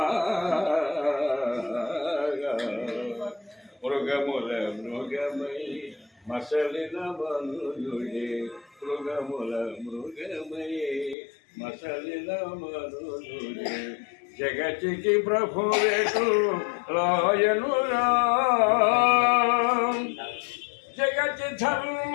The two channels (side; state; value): right; drops out; at 11.2 s